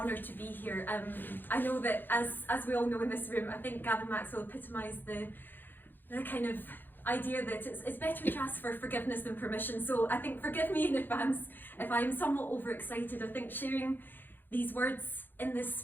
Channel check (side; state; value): right; late; 0.092 ms